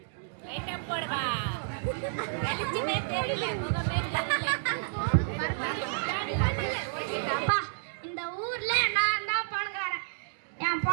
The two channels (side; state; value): left; silent; digital silence